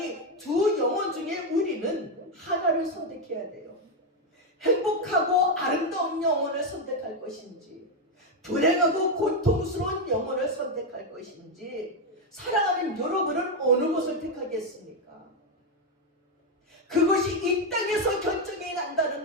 두 영혼 중에 우리는 하나를 선택해야 돼요. 행복하고 아름다운 영혼을 선택할 것인지, 불행하고 고통스러운 영혼을 선택할 것인지, 사랑하는 여러분은 어느 것을 택하겠습니까? 그것이 이 땅에서 결정이 난다는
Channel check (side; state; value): both; normal; correlation 0.05